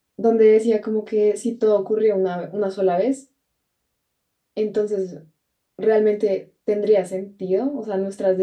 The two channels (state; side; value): identical; both; correlation 1.00